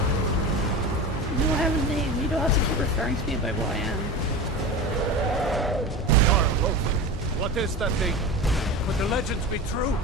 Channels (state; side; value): normal; both; correlation 0.28